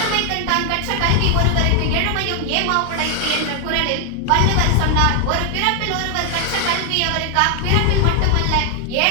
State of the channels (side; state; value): both; different; correlation 0.00